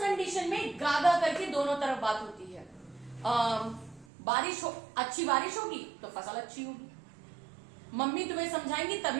कंडीशन में गागा करके दोनों तरफ बात होती है। बारिश हो, अच्छी बारिश होगी तो फसल अच्छी होगी। मम्मी तुम्हें समझाएंगी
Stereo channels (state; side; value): drops out; left; at 4.0 s